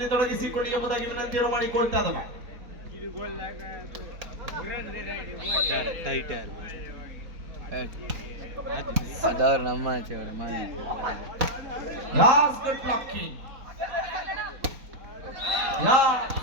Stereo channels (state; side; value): late; left; 4.1 ms